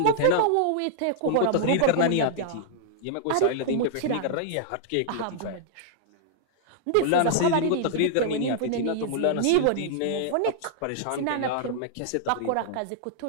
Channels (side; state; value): both; different; correlation -0.01